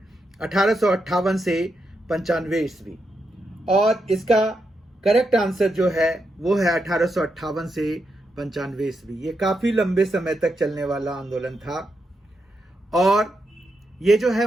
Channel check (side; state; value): both; normal; correlation 0.84